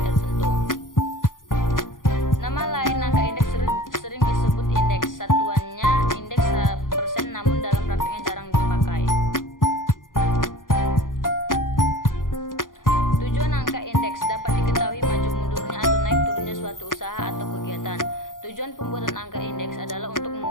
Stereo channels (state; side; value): late; right; 0.90 ms